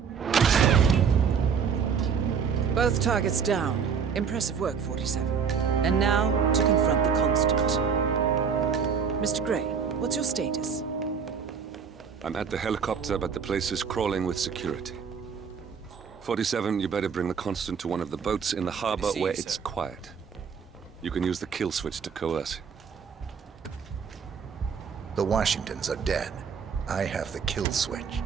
Both targets down. Impressive work, 47. And now, to confront the Constant. Mr. Gray, what's your status? I'm at the helicopter, but the place is crawling with security. 47, you better bring the Constant to one of the boats in the harbor where it's quiet. You can use the kill switch to coerce him. The Washingtons are dead. I have the kill switch.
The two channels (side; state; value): left; quieter; 6.5 dB